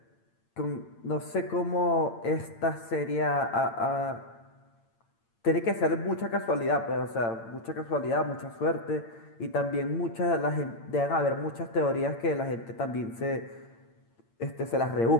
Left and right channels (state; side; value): late; right; 8.8 ms